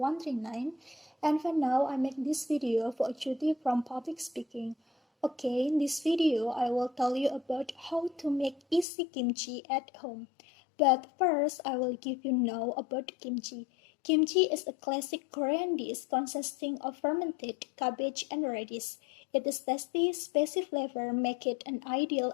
And for now, I make this video for a duty from public speaking. Okay, in this video, I will tell you about how to make easy kimchi at home. But first, I will give you know about kimchi. Kimchi is a classic Korean dish consisting of fermented cabbage and radish. Its tasty, spicy flavor make it an ideal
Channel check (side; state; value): right; drops out; at 8.8 s